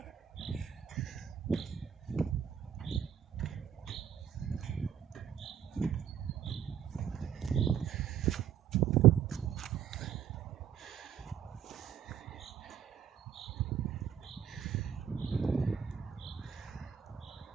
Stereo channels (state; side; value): quieter; left; 8.9 dB